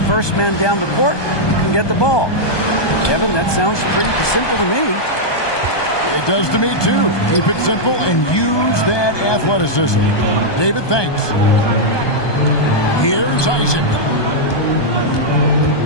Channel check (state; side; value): late; right; 1.2 ms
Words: first man down the court, you can get the ball. Kevin, that sounds pretty simple to me. It does to me, too. Keep it simple and use that athleticism. David, thanks. Here's Isaac.